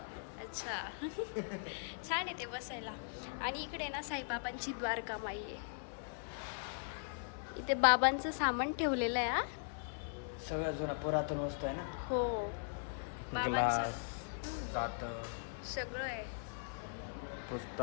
अच्छा. छान आहे ते बसायला. आणि इकडे ना साईबाबांची द्वारका माई आहे. इथे बाबांचं सामान ठेवलेलं आहे. सगळं जुना पुरातन वस्तू आहे ना. हो, बाबांचं जात सगळं आहे.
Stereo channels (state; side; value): silent; right; 51 dB below the other